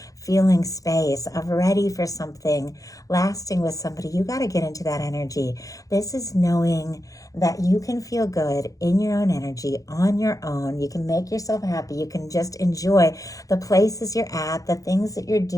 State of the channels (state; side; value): late; right; 0.17 ms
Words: feeling space of ready for something lasting with somebody, you got to get into that energy. This is knowing that you can feel good in your own energy, on your own. You can make yourself happy. You can just enjoy the places you're at, the things that you're